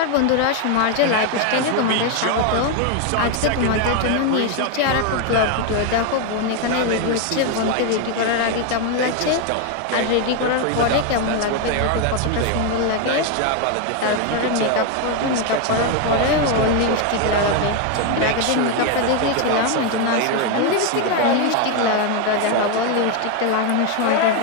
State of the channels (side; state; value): both; different; correlation 0.01